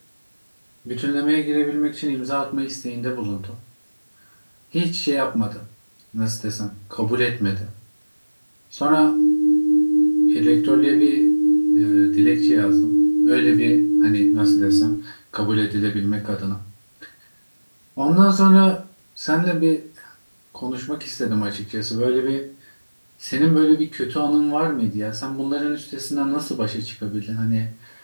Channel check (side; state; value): both; inverted; correlation -1.00